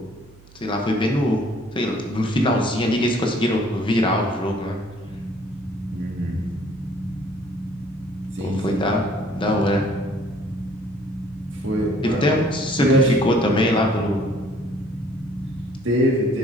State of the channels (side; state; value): right; noise; hum, 24 dB below the sound